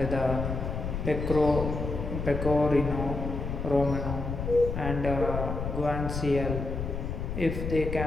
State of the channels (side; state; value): left; noise; rumble, 4 dB below the sound